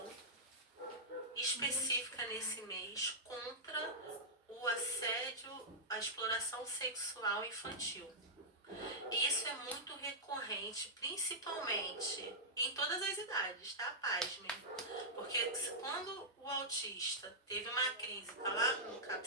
específica nesse mês contra o assédio, a exploração sexual infantil. Isso é muito recorrente, principalmente em todas as idades, tá? Pasmem. Porque quando o autista teve uma crise, tá lá no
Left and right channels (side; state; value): both; normal; correlation -0.10